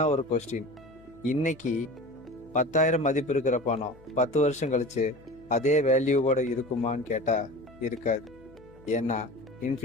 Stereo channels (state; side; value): noise; left; hum, 25 dB below the sound